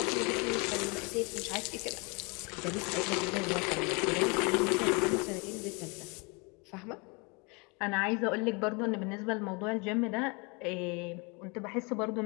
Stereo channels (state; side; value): quieter; right; 30.5 dB